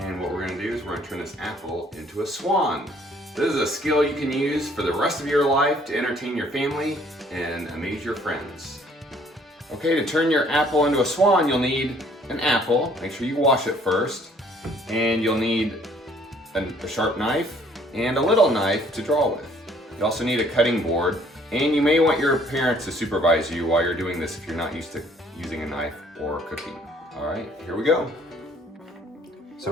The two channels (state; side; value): normal; both; correlation 0.60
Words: And what we're going to do is we're going to turn this apple into a swan. This is a skill you can use for the rest of your life to entertain your family and amaze your friends. Okay, to turn your apple into a swan you'll need an apple, make sure you wash it first, and you'll need a sharp knife and a little knife to draw with. You also need a cutting board. And you may want your parents to supervise you while you're doing this if you're not used to using a knife or cooking. All right, here we go.